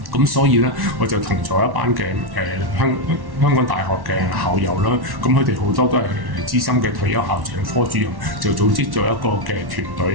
咁所以咧，我就同咗一班嘅香港大學嘅校友啦，咁佢哋好多都係資深嘅退休校長、科主任，就組織咗一個嘅團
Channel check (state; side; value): late; left; 1.1 ms